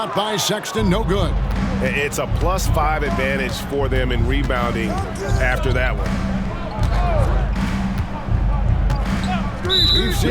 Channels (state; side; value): identical; both; correlation 1.00